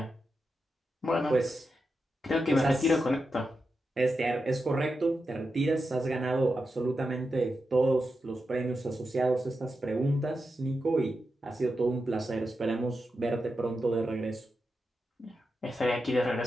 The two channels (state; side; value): normal; both; correlation 0.88